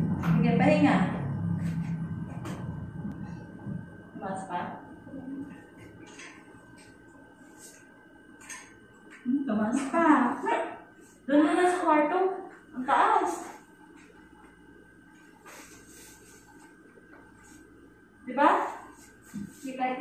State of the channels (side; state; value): both; identical; correlation 1.00